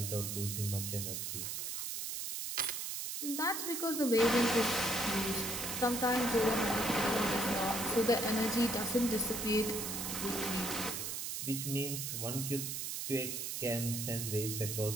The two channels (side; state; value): right; noise; hiss, 4 dB below the sound